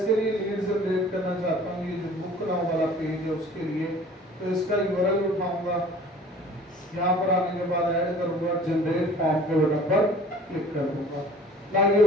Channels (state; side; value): normal; both; correlation 0.49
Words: लिए लीड जनरेट करना चाहता हूँ, ये जो बुक नाउ वाला पेज है उसके लिए। तो इसका यूआरएल उठाऊंगा, यहाँ पर आने के बाद ऐड करूंगा, जनरेट फॉर्म के बटन पर क्लिक कर दूंगा। ना ये